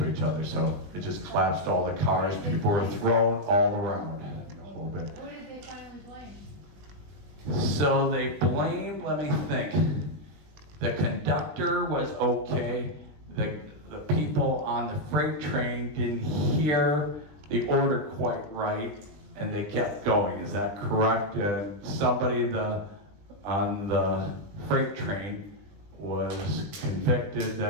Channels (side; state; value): left; late; 20 ms